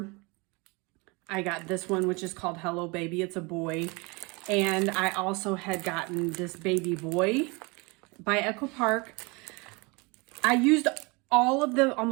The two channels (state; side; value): quieter; left; 27.8 dB